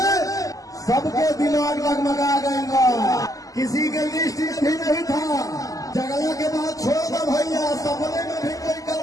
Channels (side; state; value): right; late; 0.17 ms